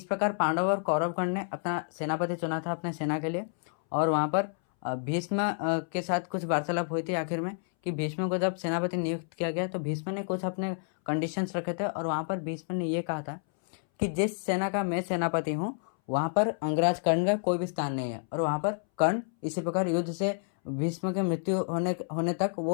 प्रकार पांडव और कौरवगण ने अपना सेनापति चुना था अपने सेना के लिए, और वहाँ पर भीष्म के साथ कुछ वार्तालाप हुई थी आखिर में कि भीष्म को जब सेनापति नियुक्त किया गया तो भीष्म ने कुछ अपने कंडीशंस रखे थे, और वहाँ पर भीष्म ने ये कहा था कि जिस सेना का मैं सेनापति हूँ वहाँ पर अंगराज कर्ण का कोई भी स्थान नहीं है, और वहाँ पर कर्ण इसी प्रकार युद्ध से भीष्म के मृत्यु होने तक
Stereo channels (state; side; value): silent; right; 58 dB below the other